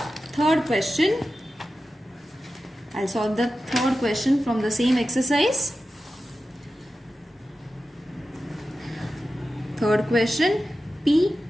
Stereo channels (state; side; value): normal; both; correlation 0.93